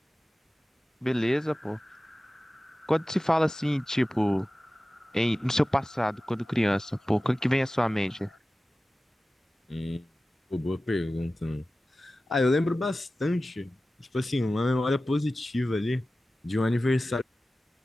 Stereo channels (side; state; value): both; normal; correlation 0.96